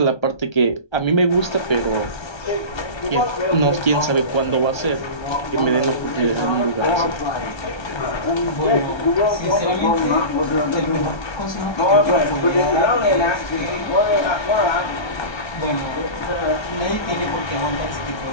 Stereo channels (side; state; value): right; late; 1.3 ms